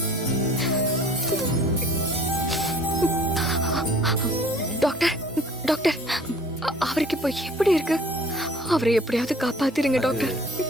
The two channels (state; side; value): normal; both; correlation 0.51